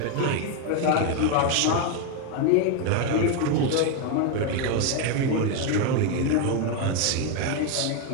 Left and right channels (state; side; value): different; both; correlation 0.01